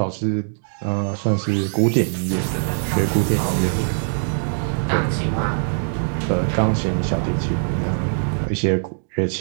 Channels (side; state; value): left; silent; digital silence